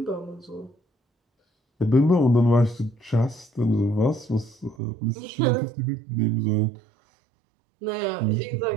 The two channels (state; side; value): drops out; left; at 4.8 s